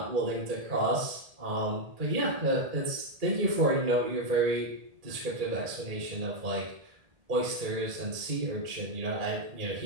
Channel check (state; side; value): late; left; 1.8 ms